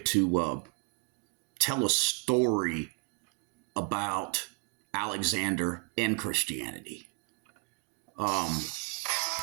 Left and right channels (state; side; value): quieter; left; 32.1 dB